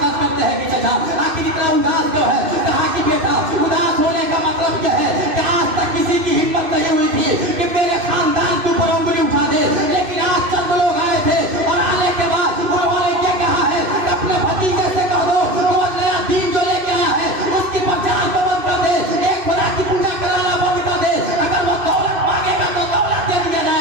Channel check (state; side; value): late; left; 2.6 ms